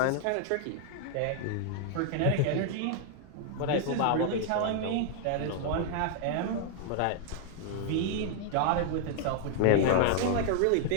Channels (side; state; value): both; different; correlation -0.01